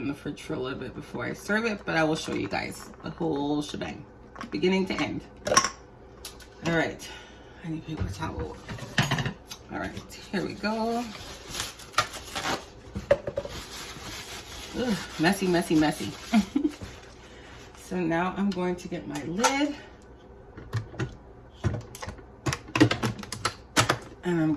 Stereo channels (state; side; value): identical; both; correlation 1.00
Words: the fridge for a little bit before I serve it, but I will show you guys the whole shebang, beginning to end. All right, I need a paper towel. All right, here we go. Ugh, messy, messy, messy. So now I'm going to get my lid. And I'm